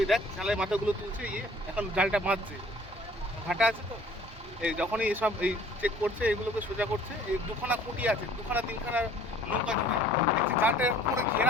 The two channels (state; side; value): normal; both; correlation 0.53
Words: দেখ জালের মাথাগুলো তুলছে, এখন জালটা বাঁধছে, ভাটা আছে তো, এই যখনই এসব এই চেক করছে, এগুলোকে সোজা করছে। এই 2খানা খুঁটি আছে, 2খানা 3খানা নৌকা জুড়ে দেখছি জালটা পুরো